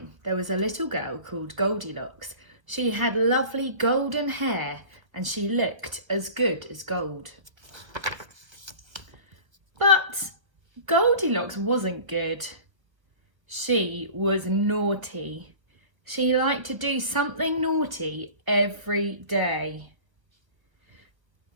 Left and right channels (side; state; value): left; late; 1.1 ms